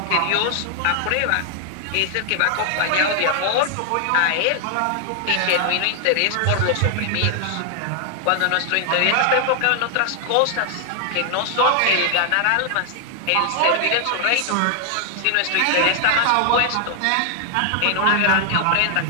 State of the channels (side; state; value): both; different; correlation 0.00